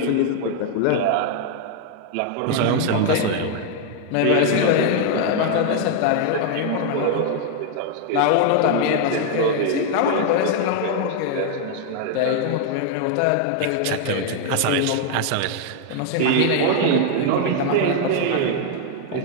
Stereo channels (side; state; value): both; different; correlation 0.00